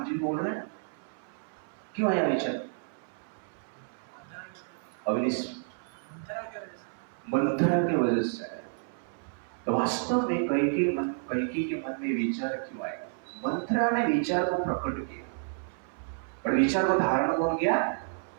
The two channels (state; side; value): silent; left; 58 dB below the other